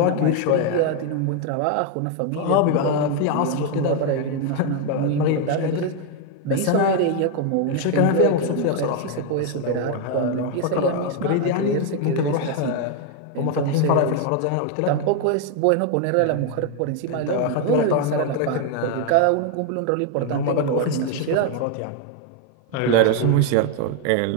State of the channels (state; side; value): different; both; correlation 0.01